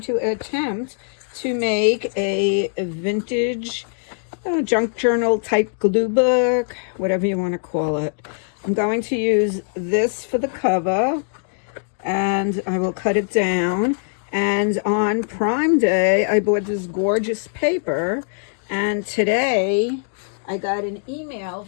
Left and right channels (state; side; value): silent; right; digital silence